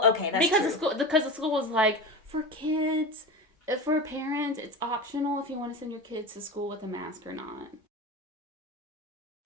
okay, that's true. Because the school was like, for kids, for parents, it's optional if you want to send your kids to school with a mask or not.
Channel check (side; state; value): both; normal; correlation 0.27